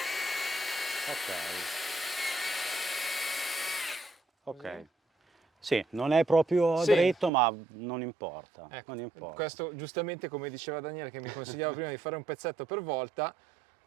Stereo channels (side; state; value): left; drops out; at 7.3 s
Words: Ok. Sì, non è proprio dritto, ma non importa. Ecco, non importa. Questo giustamente, come diceva Daniele, che mi consigliava prima di fare un pezzetto per volta,